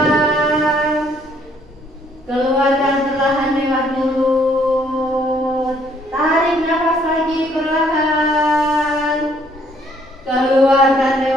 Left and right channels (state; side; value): normal; both; correlation 0.65